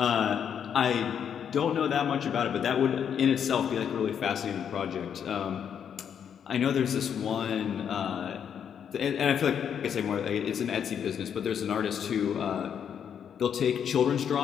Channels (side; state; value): right; quieter; 8.2 dB